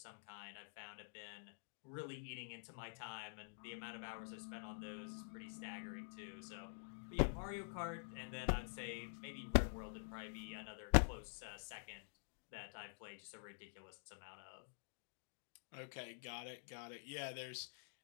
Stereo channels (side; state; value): right; silent; digital silence